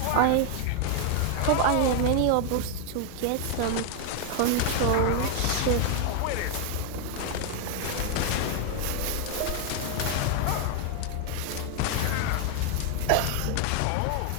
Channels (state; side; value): different; both; correlation 0.00